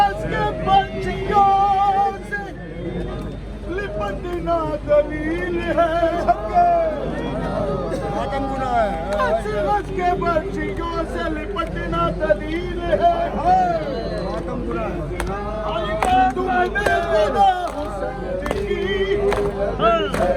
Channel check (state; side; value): identical; both; correlation 1.00